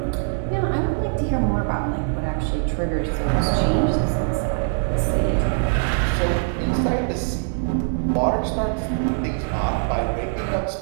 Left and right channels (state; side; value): silent; left; digital silence